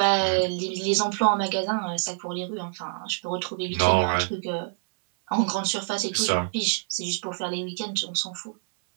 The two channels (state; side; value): silent; left; 61 dB below the other